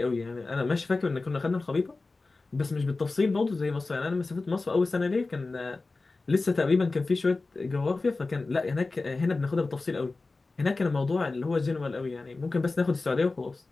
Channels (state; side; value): quieter; right; 3.5 dB